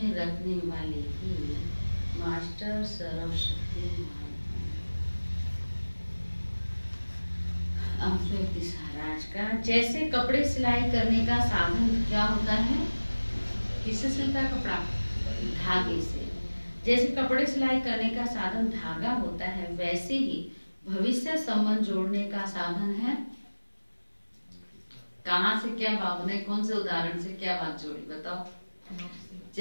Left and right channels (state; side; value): inverted; both; correlation -1.00